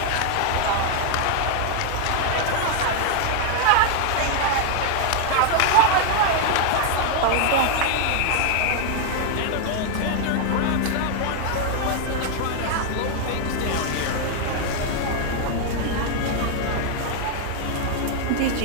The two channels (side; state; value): both; different; correlation 0.00